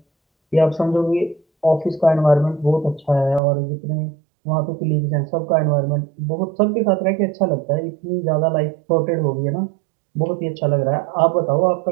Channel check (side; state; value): left; drops out; at 3.4 s